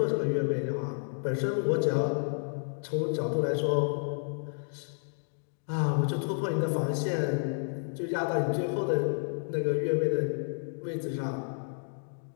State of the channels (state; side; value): silent; right; digital silence